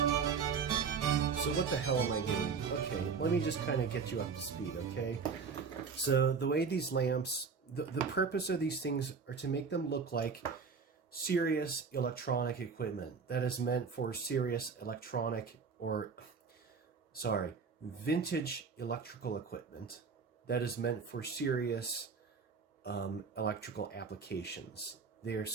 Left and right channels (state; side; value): quieter; left; 5.5 dB